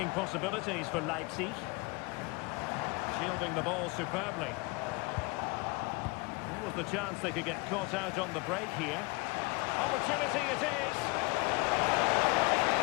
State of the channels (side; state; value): right; quieter; 26.2 dB